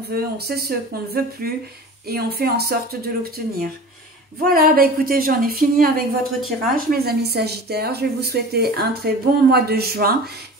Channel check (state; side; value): normal; both; correlation 0.38